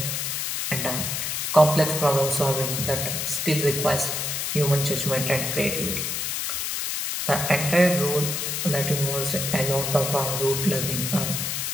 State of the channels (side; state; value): left; noise; hiss, 1 dB below the sound